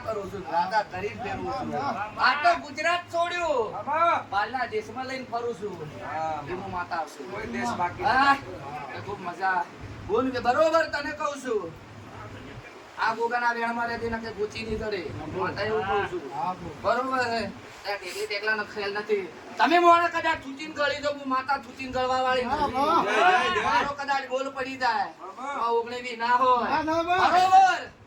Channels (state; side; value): identical; both; correlation 1.00